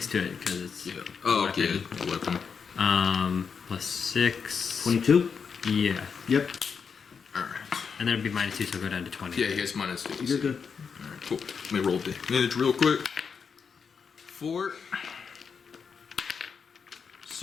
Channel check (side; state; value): right; quieter; 6.1 dB